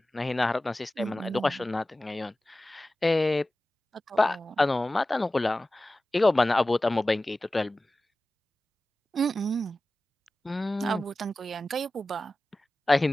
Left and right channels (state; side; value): normal; both; correlation 0.96